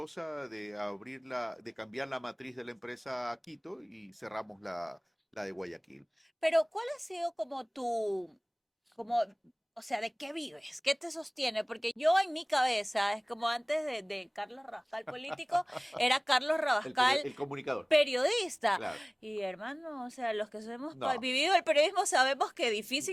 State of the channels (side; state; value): both; identical; correlation 1.00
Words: de de cambiar la matriz de la empresa a Quito y cerramos la de Guayaquil. Pero ¿cuál ha sido como como, o sea, de qué vives? ¿Qué te sostiene? Porque yo en mi cabeza, es como antes de Carlos Rabascal político, era Carlos Rabascal El comunicador, periodista. claro. Y hermano, o sea, los que hemos No, vivido el periodismo sabemos que es